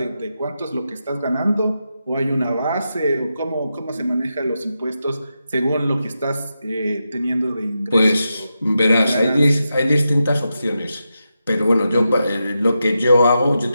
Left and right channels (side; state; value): both; inverted; correlation -0.88